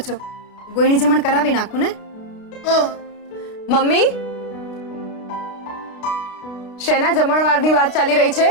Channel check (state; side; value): late; right; 32 ms